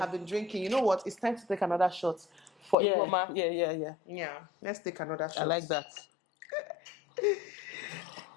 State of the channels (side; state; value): right; drops out; at 2.8 s